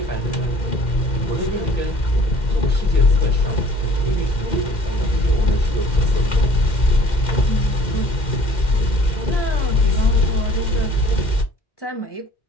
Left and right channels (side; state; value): right; late; 2.1 ms